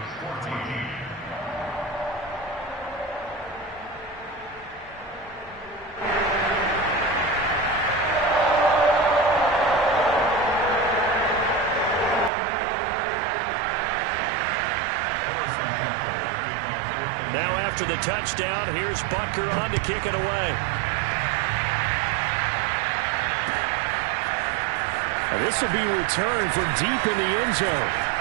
Now after the touchdown, here's Butker on to kick it away. And this will be returned from deep in the end zone.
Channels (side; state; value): left; drops out; at 12.3 s